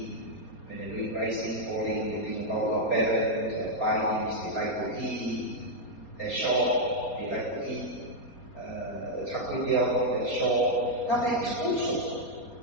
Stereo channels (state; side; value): late; right; 4.3 ms